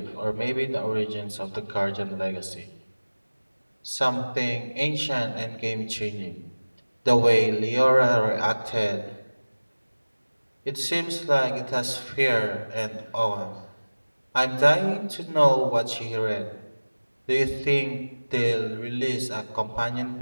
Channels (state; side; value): inverted; both; correlation -1.00